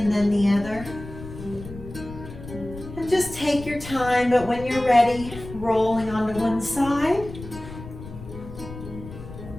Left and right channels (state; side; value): noise; left; rumble, 13 dB below the sound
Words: then the other. And just take your time, but when you're ready, rolling onto one side.